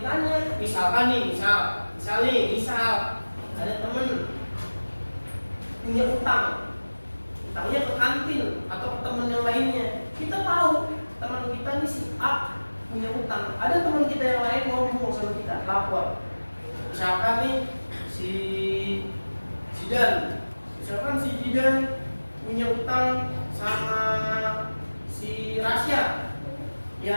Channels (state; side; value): inverted; both; correlation -1.00